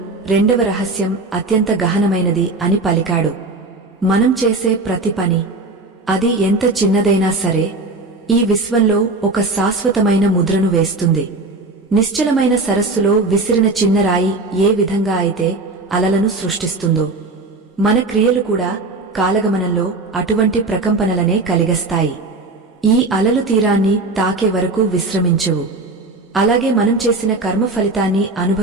రెండవ రహస్యం అత్యంత గహనమైనది అని పలికాడు. మనం చేసే ప్రతి పని, అది ఎంత చిన్నదైనా సరే, ఈ విశ్వంలో ఒక శాశ్వతమైన ముద్రను వేస్తుంది. నిశ్చలమైన సరస్సులో విసిరిన చిన్న రాయి ఏ విధంగా అయితే అలలను సృష్టిస్తుందో, మన క్రియలు కూడా కాలగమనంలో అటువంటి ప్రకంపనలనే కలిగస్తాయి. ఈ అలలు తీరాన్ని తాకే వరకు విశ్రమించవు. అలాగే మనం చేసిన కర్మ ఫలితాన్ని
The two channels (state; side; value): quieter; left; 3.3 dB